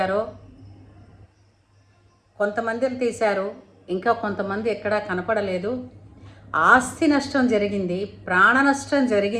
కొంతమందిని తీశారు, ఇంకా కొంతమంది ఎక్కడా కనపడలేదు. ఆస్తి నష్టం జరిగింది, ప్రాణ నష్టం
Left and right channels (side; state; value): both; identical; correlation 1.00